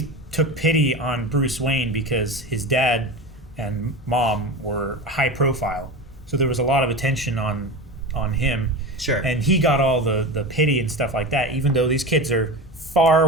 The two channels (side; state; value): both; normal; correlation 0.27